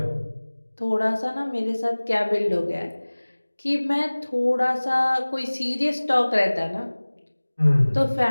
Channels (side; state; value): both; inverted; correlation -1.00